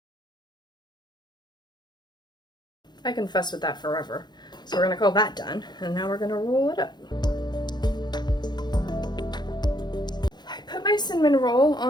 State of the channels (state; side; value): late; right; 0.21 ms